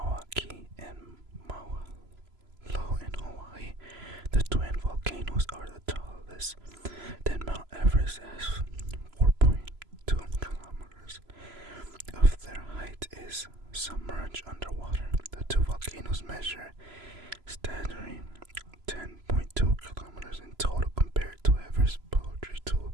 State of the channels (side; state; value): left; late; 3.0 ms